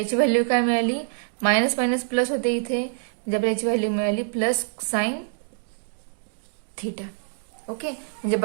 व्हॅल्यू काय मिळाली, मायनस मायनस प्लस होते इथे, म्हणजे आपल्याला याची व्हॅल्यू मिळाली प्लस साइन थिटा. ओके, म्हणजे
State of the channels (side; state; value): left; silent; digital silence